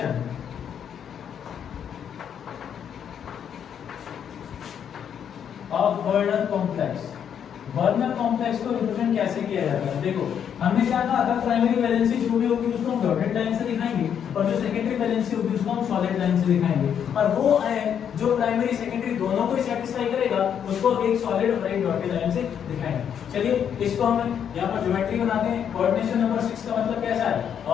of Werner complex, Werner complex को रिप्रेजेंट कैसे किया जाता है, देखो हमने क्या कहा था, प्राइमरी वैलेंसी जो भी होगी उसको हम डॉटेड लाइन से दिखाएंगे और जो सेकेंडरी वैलेंसी होगी उसको हम सॉलिड लाइन से दिखाएंगे, और वो जो प्राइमरी सेकेंडरी दोनों को सेटिस्फाई करेगा उसको एक सॉलिड और एक डॉटेड लाइन से दिखाएंगे। चलिए इसको हम यहाँ पर ज्योमेट्री बनाते हैं। कोऑर्डिनेशन नंबर 6 का मतलब कैसा है,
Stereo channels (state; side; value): quieter; right; 8.5 dB